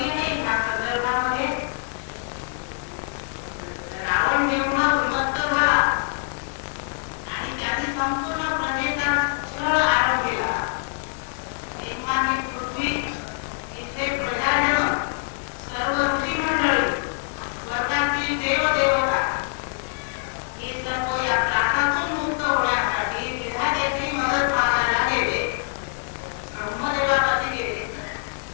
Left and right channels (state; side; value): silent; right; digital silence